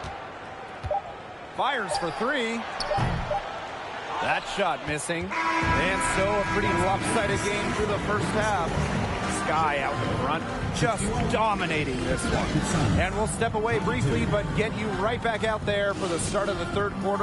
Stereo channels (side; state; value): both; identical; correlation 1.00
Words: Fires for 3. That shot missing. And so a pretty lopsided game through the first half. Sky out in front, just dominating this one. And we'll step away briefly, but get you right back out there for the start of the third